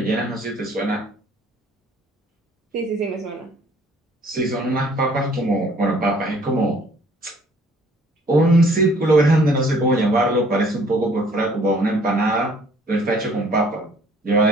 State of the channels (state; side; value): normal; both; correlation 0.58